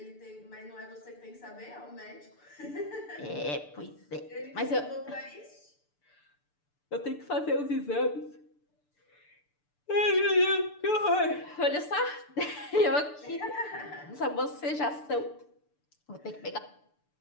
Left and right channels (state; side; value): late; right; 6.8 ms